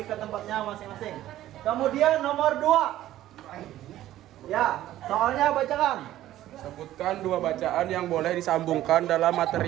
ke tempatnya masing-masing. Kemudian nomor 2. Ya, soalnya bacakan. Sebutkan dua bacaan yang boleh disambungkan dalam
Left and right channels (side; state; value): left; quieter; 13.8 dB